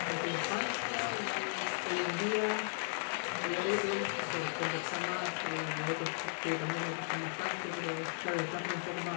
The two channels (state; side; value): silent; right; 54 dB below the other